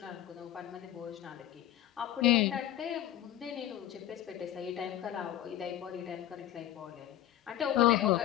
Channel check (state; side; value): quieter; right; 12.7 dB